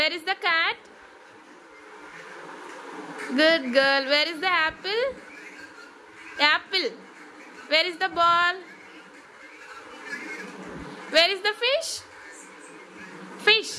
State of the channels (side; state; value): both; identical; correlation 1.00